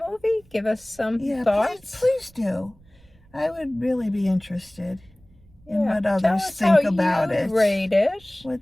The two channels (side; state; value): right; noise; rumble, 28 dB below the sound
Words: movie, give us some thoughts. Please do. I would really be interested in what others Tell us think how about you'd it. rate it.